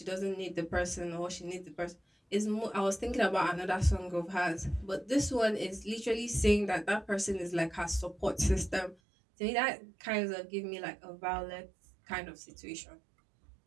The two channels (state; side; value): drops out; left; at 9.0 s